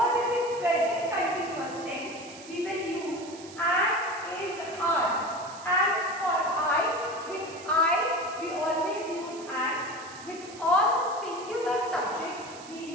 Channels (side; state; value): right; noise; hiss, 18 dB below the sound